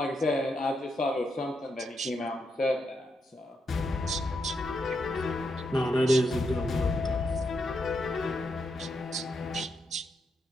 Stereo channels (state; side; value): normal; both; correlation 0.82